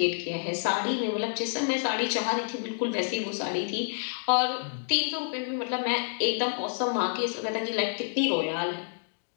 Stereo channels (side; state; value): right; silent; digital silence